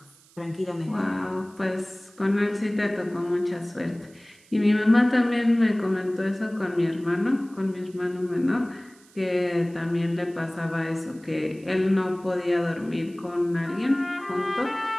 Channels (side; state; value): right; noise; hiss, 28 dB below the sound